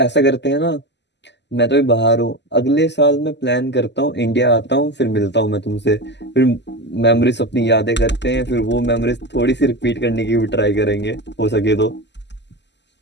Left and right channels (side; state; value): right; late; 0.51 ms